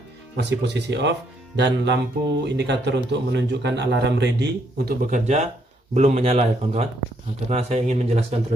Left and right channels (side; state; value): both; normal; correlation 0.72